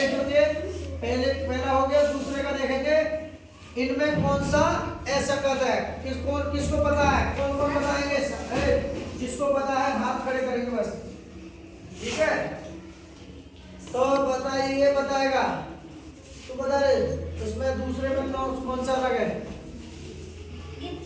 लीजिए। पहला हो गया, दूसरे का देखेंगे। इनमें कौन सा असंगत है? किसको पता है? कौन कौन बताएंगे? जिसको पता है हाथ खड़े करेंगे बस। ठीक है, तो बताइए, बताएगा तो बता रहे। इसमें दूसरे में कौन सा अलग है?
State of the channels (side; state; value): both; identical; correlation 1.00